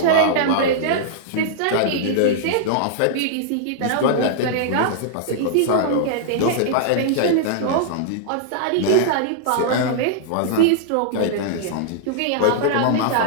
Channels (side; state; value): both; different; correlation -0.01